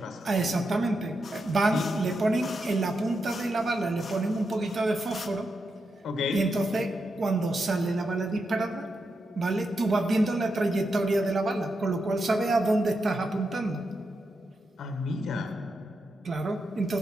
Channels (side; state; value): both; normal; correlation 0.85